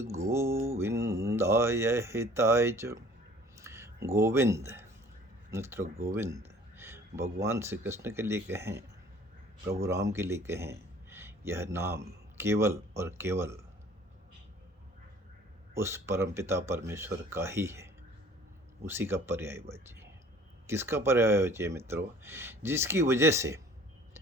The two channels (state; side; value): normal; both; correlation 0.50